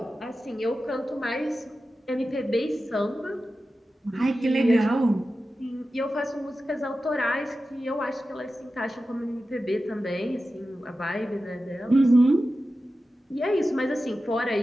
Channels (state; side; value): normal; both; correlation 0.93